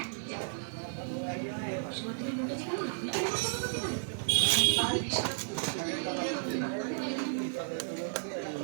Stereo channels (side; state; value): left; silent; digital silence